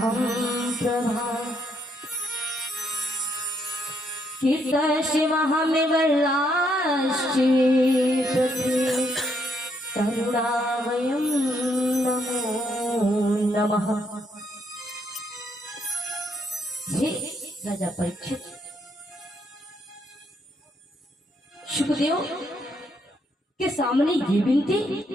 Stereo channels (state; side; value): normal; both; correlation 0.74